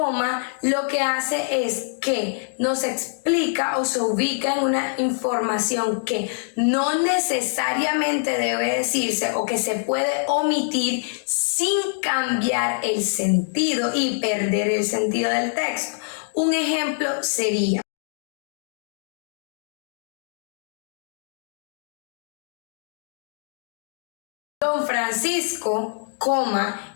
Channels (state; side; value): silent; right; digital silence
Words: lo que hace es que nos explica o se ubica en una información que no necesariamente debe decirse o que se puede omitir sin cambiar el sentido y perder el sentido del texto. Un ejemplo sería: Don Francisco,